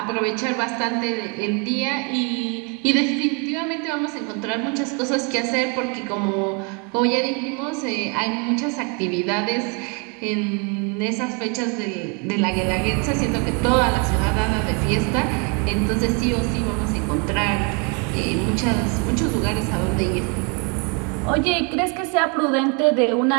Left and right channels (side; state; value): left; quieter; 34.5 dB